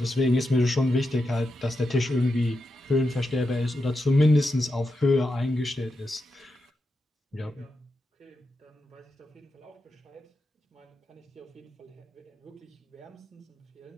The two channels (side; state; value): both; normal; correlation 0.87